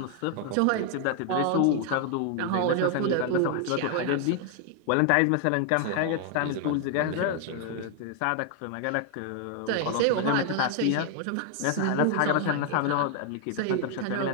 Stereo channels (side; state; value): both; different; correlation 0.00